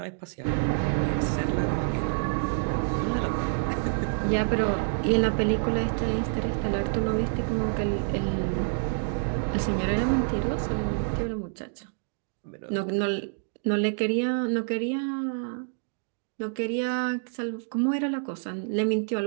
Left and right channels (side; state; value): left; silent; digital silence